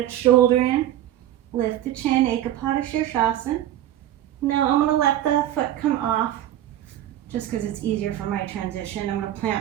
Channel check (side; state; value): left; quieter; 12.6 dB